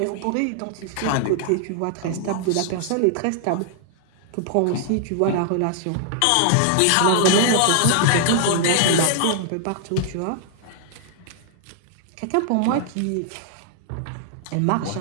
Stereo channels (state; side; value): different; both; correlation 0.00